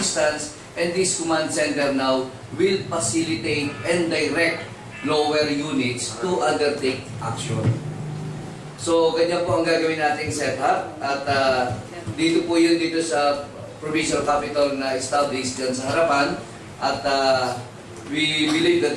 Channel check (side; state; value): both; identical; correlation 1.00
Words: and this command center now will facilitate and direct lower units to undertake action. So, ganyan po ang gagawin nating setup, at dito po yun dito sa provincial capital na established dyan sa harapan, at we believe